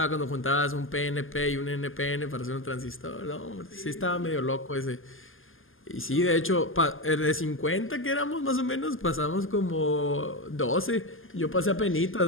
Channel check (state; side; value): late; right; 0.59 ms